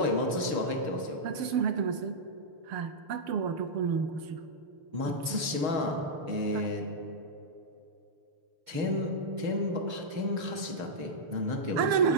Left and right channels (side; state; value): left; late; 6.2 ms